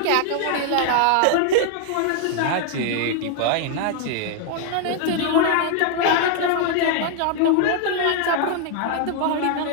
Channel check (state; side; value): different; both; correlation 0.00